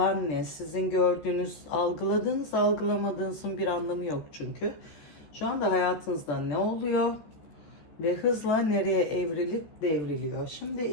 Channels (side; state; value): right; late; 14 ms